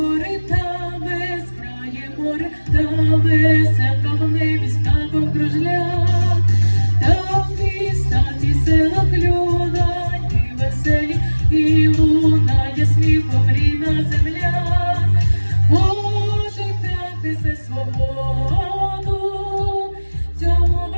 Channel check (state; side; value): inverted; both; correlation -1.00